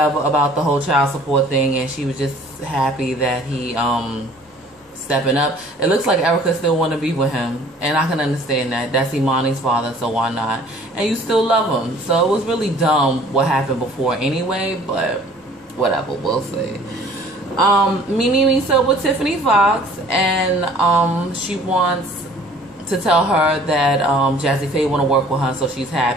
about the whole child support thing, and she was just happy that he stepping up. It looks like Erica still want to be with him, and I can understand that. That's Imani's father, so why not? And you still love him. So it was really dumb what happened before anyway, but whatever, we'll see. Mimi meets up with Tiffany Foxx, and she wants to tell her that Jazzy Faye want to work with her, so she's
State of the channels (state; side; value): normal; both; correlation 0.52